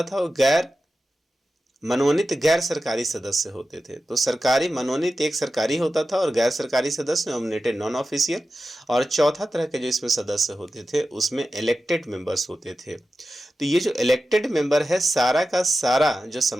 था वो गैर मनोनीत गैर सरकारी सदस्य होते थे। तो सरकारी मनोनीत एक सरकारी होता था और गैर सरकारी सदस्य नॉमिनेटेड नॉन ऑफिशियल। और चौथा तरह के जो इसमें सदस्य होते थे उसमें इलेक्टेड मेंबर्स होते थे। तो ये जो इलेक्टेड मेंबर है, सारा का सारा जो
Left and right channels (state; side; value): normal; both; correlation 0.93